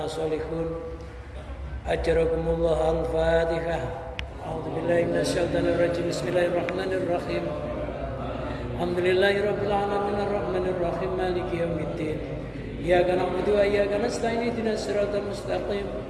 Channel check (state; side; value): identical; both; correlation 1.00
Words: sholihun. Ajarakumullah. Al-Fatihah. A'udzubillahi minasyaitonir rajim. Bismillahirrahmanirrahim. Alhamdulillahirabbil alamin arrahmanir rahim maliki yaumiddin. Iyyaka na'budu wa iyyaka nasta'in ihdinas siratal mustaqim